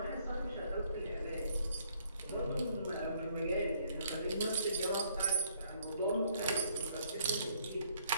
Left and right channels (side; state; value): both; inverted; correlation -0.66